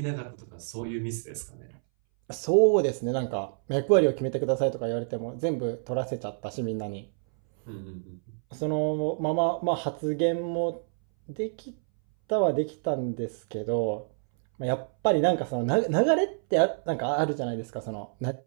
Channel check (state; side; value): silent; left; 59 dB below the other